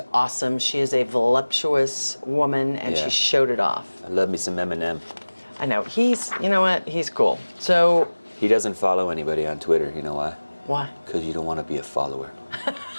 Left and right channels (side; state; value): both; inverted; correlation -1.00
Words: awesome. She is a voluptuous woman and Yeah. she showed it off. I love me some Eminem. I know. You know what? He's cool. So, He doesn't follow anybody on Twitter. You know why? why? Because you don't want to be a follower.